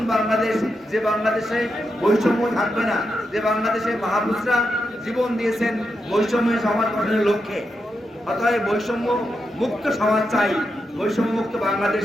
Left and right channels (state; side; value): normal; both; correlation 0.86